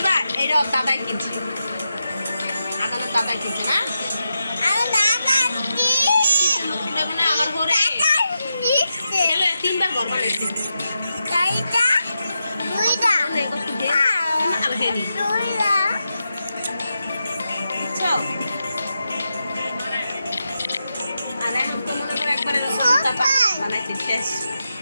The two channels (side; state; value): both; inverted; correlation -0.87